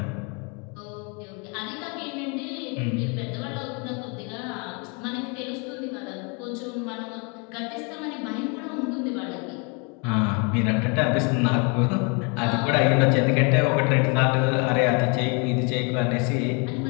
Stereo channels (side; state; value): right; quieter; 33.3 dB